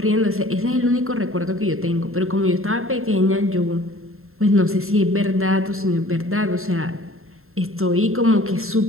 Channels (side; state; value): left; late; 0.62 ms